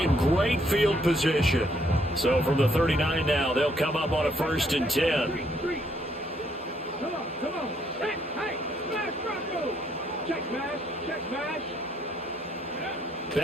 great field position. So from the 39 now, they'll come up on a 1st and 10. Come on. Hey, smash Bronco. Check smash.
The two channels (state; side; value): normal; both; correlation 0.70